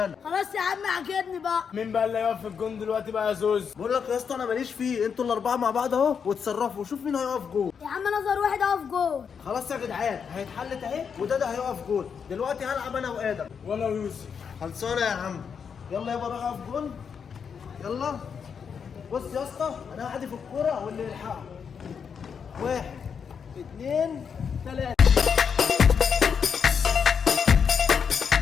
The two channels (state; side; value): quieter; right; 6.7 dB